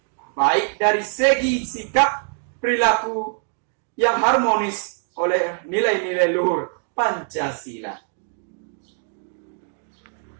Baik dari segi sikap, perilaku yang harmonis oleh nilai-nilai luhur Pancasila.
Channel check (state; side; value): silent; left; 63 dB below the other